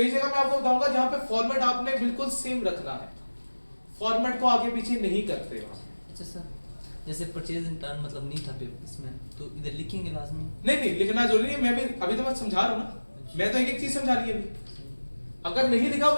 जगह मैं आपको बताऊंगा जहां पे फॉर्मेट आपने बिल्कुल सेम रखना है, फॉर्मेट को आगे पीछे नहीं करते वहां। अच्छा सर, जैसे परचेज इन टर्न मतलब नहीं था पेपर इसमें, तो इधर लिखेंगे लाजमी? नहीं लिखना जरूरी नहीं है, मैं भी अभी तो मैं समझा रहा हूँ ना, मैं तो एक एक चीज समझा रही है अभी। अगर नहीं लिखा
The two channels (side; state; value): both; inverted; correlation -1.00